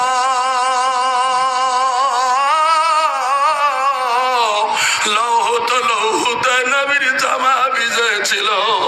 লৌহত লৌহত নবীর জামা ভিজেছিল।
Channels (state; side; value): identical; both; correlation 1.00